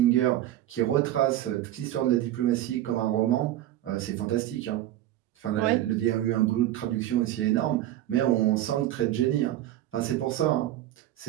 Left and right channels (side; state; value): left; quieter; 13.5 dB